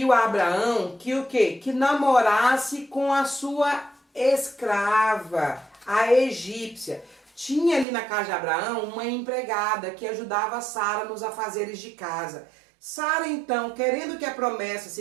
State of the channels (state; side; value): drops out; left; at 7.9 s